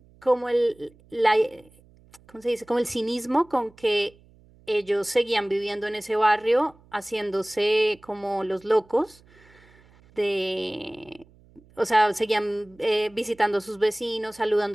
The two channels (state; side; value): noise; right; hum, 28 dB below the sound